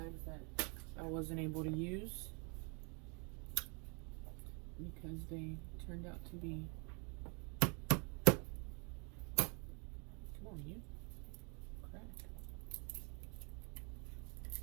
that I wasn't able to use because they turned out to be. Come on, you. Crack.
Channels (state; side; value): quieter; left; 34.7 dB